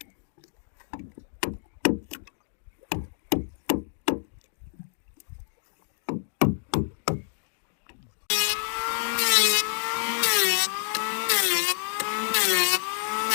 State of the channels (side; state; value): right; silent; digital silence